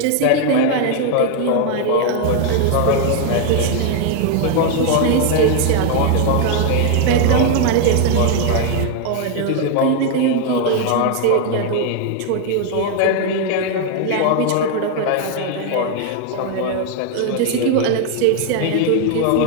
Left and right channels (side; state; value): both; different; correlation 0.01